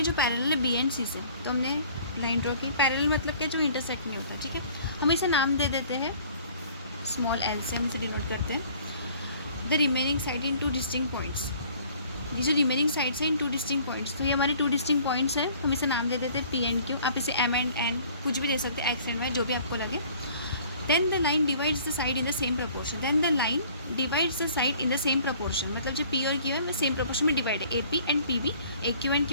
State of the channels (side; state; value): both; inverted; correlation -0.53